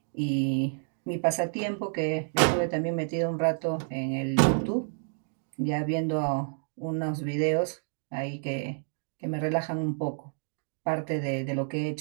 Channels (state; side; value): silent; left; digital silence